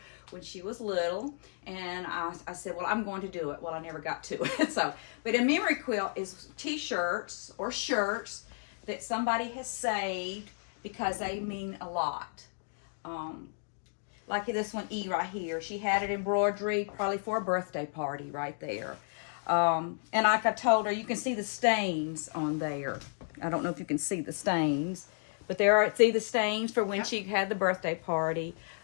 when she was little, and I said, well, I'm going to do it. Well, I never got to it. But a memory quilt is t-shirts or shirts that somebody has saved because they mean a lot. Like this one, E right here. She had it embroidery probably for a birthday party right there. And like I told her, you can see the stains on there. I don't know if you can see the stains, but see the stains for when she had the birthday party.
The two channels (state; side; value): silent; right; digital silence